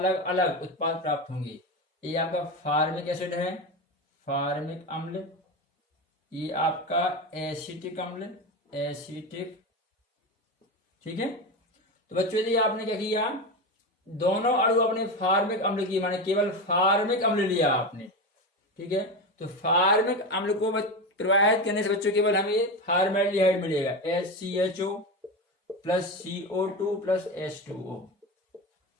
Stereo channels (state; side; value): normal; both; correlation 0.19